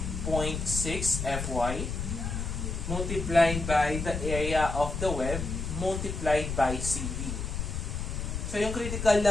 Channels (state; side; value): noise; left; rumble, 4 dB below the sound